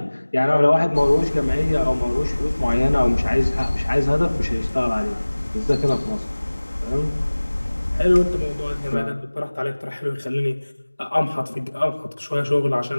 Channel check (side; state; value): both; inverted; correlation -1.00